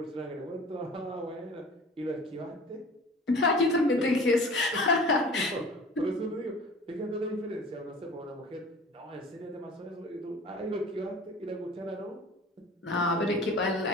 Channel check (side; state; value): both; normal; correlation 0.43